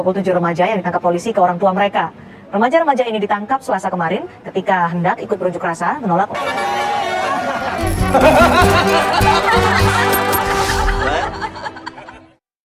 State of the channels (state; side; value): identical; both; correlation 1.00